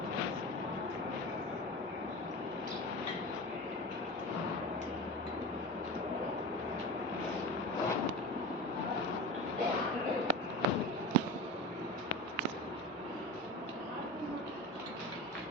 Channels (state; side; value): normal; both; correlation 0.29